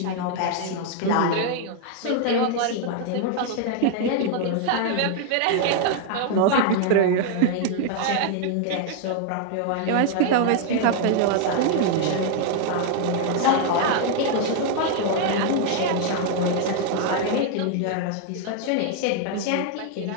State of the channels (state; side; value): different; both; correlation 0.00